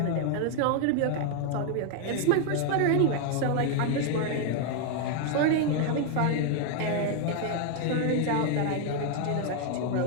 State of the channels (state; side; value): different; both; correlation 0.00